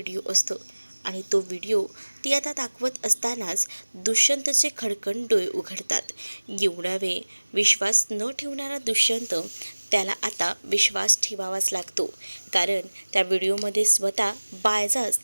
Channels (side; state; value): both; inverted; correlation -1.00